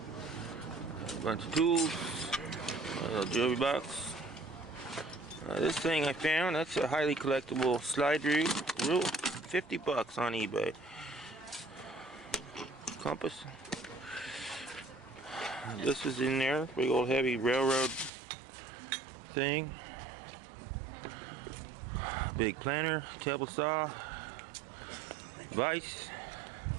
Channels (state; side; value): drops out; left; at 18.1 s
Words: A bunch of tools. A little jewelry box. This thing I found, that's a highly collectible slide rule. 50 bucks on eBay. Compass. This is in there. Big old heavy railroad thing. Big planter, table saw, vise.